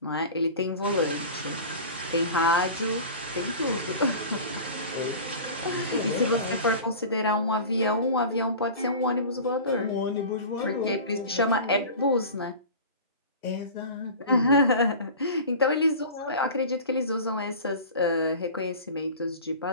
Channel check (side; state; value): both; inverted; correlation -0.36